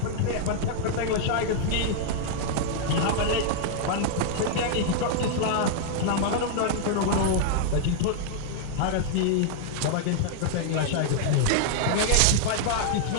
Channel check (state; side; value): different; both; correlation -0.01